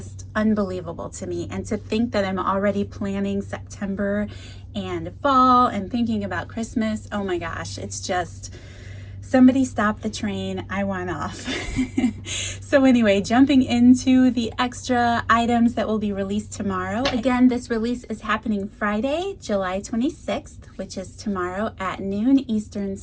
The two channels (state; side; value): identical; both; correlation 1.00